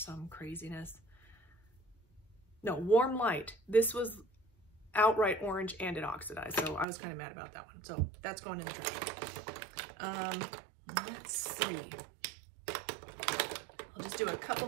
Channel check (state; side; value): drops out; left; at 6.9 s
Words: craziness. No, Warm Light. This was outright orange and it oxidized. So I was kind of mad about that one. So that's going in the trash. Let's see. I'll just do a couple